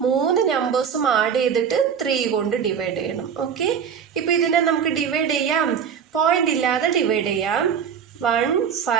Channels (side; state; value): left; quieter; 7.4 dB